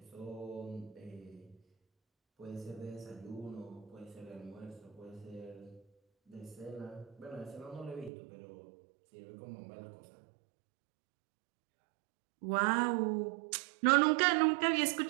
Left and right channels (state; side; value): drops out; left; at 8.1 s